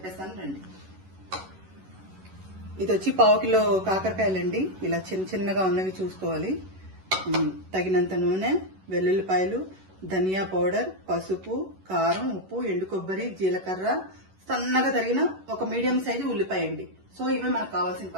రండి. ఇది వచ్చి 1/2 కిలో కాకరకాయలండి. ఇలా చిన్న చిన్నగా ఉన్నవి చూసుకోవాలి. తగినంత నూనె, వెల్లుల్లిపాయలు, ధనియా పౌడర్, పసుపు, కారం, ఉప్పు, ఎండు కొబ్బరి, జీలకర్ర, సన్నగా తరిగిన ఒక మీడియం సైజు ఉల్లిపాయ అండి. సో ఇవే మనకు కావాల్సిన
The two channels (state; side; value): late; left; 11 ms